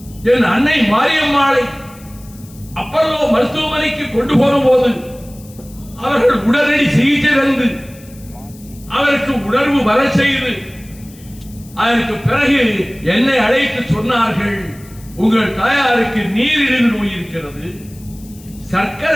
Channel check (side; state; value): left; noise; hiss, 23 dB below the sound